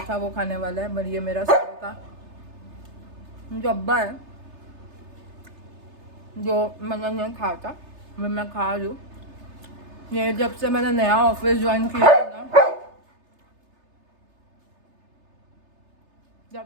था वो खाने वाला है। पर ये मेरा सुबह का जो अब्बा है जो मैंने नहीं खाया था, मैं खा रही हूँ। ये जब से मैंने नया ऑफिस ज्वाइन किया है ना,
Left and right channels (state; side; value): late; left; 3.3 ms